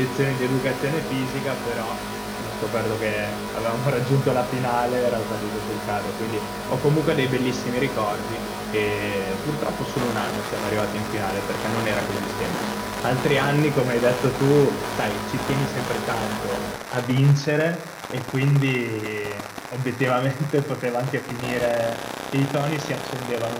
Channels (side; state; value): both; identical; correlation 1.00